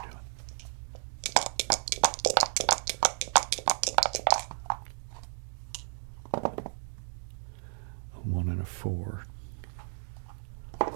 you're doing. A 1 and a 4.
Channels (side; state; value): left; silent; 56 dB below the other